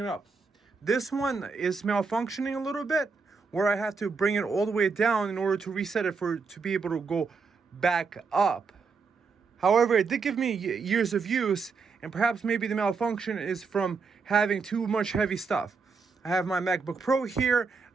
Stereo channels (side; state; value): left; quieter; 4.9 dB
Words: up? This one is malfunctioning a little bit, where I have to bring it all the way down in order to reset it to be able to go back up. However, it did give me years of use, and perhaps maybe the malfunction is from having too much heavy stuff. I have my MacBook Pro here,